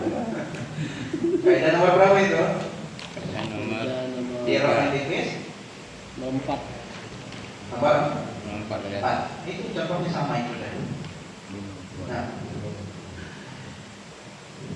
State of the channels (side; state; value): both; identical; correlation 1.00